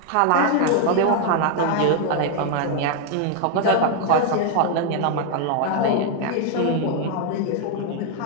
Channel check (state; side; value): different; both; correlation 0.00